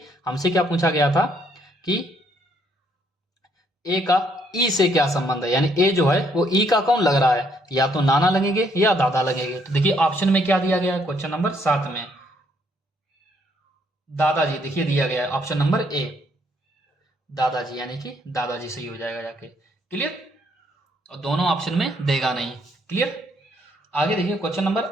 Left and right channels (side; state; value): both; normal; correlation 0.69